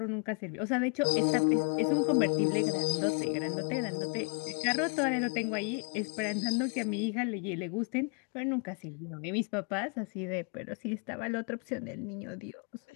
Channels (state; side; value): quieter; right; 37.5 dB